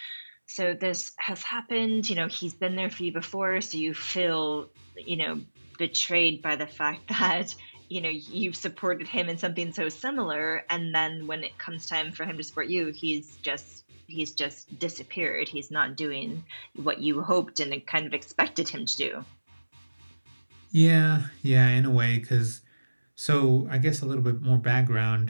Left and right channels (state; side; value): inverted; both; correlation -1.00